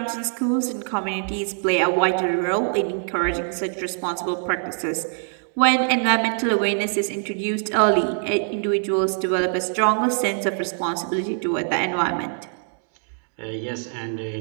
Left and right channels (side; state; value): left; silent; 63 dB below the other